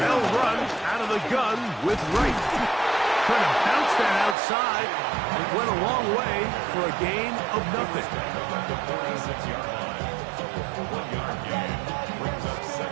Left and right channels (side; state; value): left; drops out; at 4.4 s